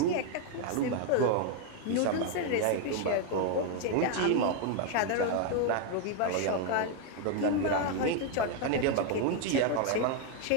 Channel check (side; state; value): both; different; correlation 0.01